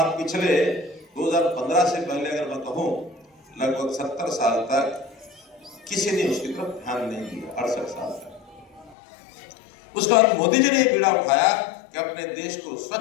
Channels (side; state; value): right; drops out; at 9.0 s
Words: पिछले 2015 से पहले अगर मैं कहूँ, लगभग 70 साल तक किसी ने उसकी तरफ ध्यान नहीं दिया, 68 साल तक। उसके बाद मोदी जी ने बीड़ा उठाया कि अपने देश को